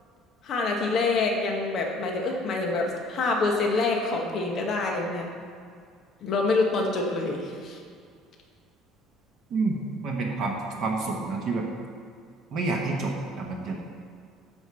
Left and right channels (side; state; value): both; normal; correlation 0.56